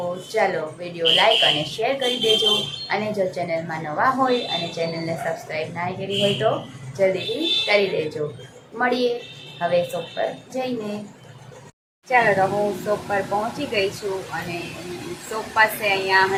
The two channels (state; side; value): identical; both; correlation 1.00